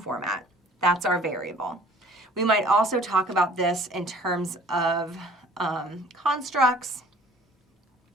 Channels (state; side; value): normal; both; correlation 0.51